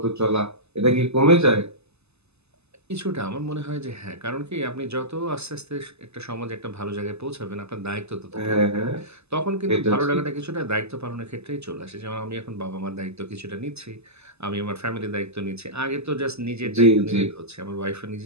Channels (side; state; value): left; late; 0.80 ms